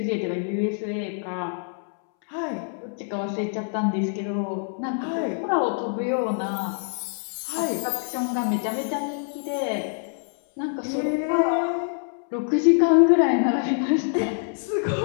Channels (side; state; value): right; silent; 62 dB below the other